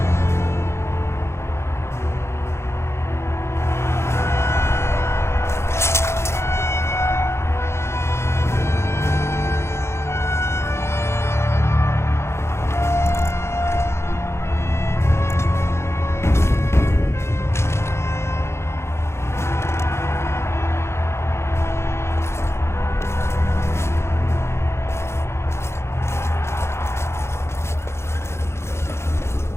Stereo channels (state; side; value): late; right; 0.13 ms